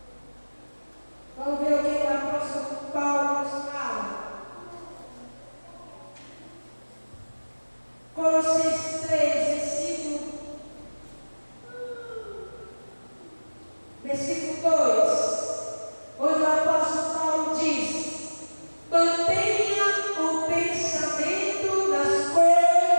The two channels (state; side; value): inverted; both; correlation -1.00